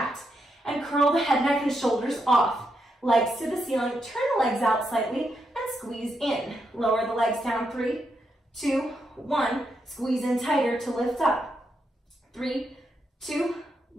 and curl the head, neck, and shoulders off. Legs to the ceiling, turn the legs out slightly, and squeeze in. Lower the legs down, 3, 2, 1. Squeeze in tighter to lift up. 3, 2,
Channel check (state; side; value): normal; both; correlation 0.82